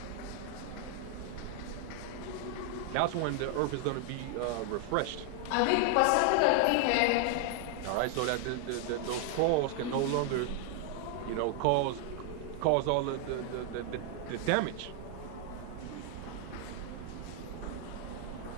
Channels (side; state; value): both; different; correlation 0.00